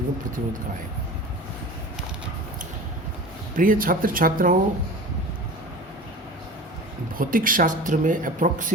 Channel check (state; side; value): normal; both; correlation 0.36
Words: प्रतिरोध का आएगा। प्रिय छात्र छात्राओं, भौतिक शास्त्र में